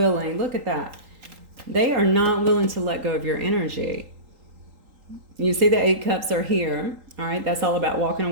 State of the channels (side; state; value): left; late; 3.8 ms